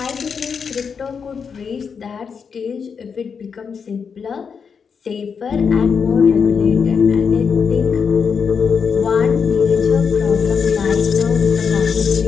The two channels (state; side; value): quieter; right; 6.1 dB